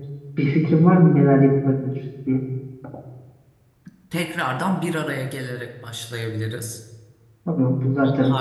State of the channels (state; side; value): identical; both; correlation 1.00